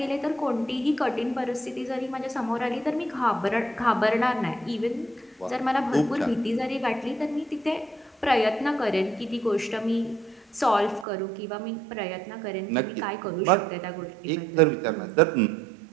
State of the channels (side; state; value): left; drops out; at 11.1 s